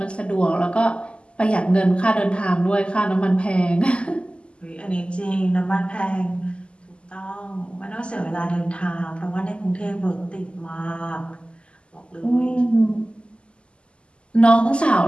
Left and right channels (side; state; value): right; late; 0.053 ms